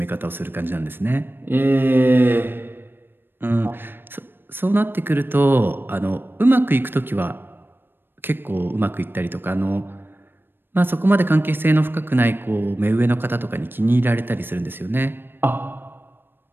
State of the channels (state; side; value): late; left; 0.098 ms